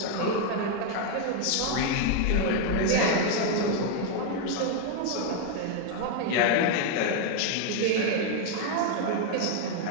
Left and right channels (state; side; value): different; both; correlation 0.01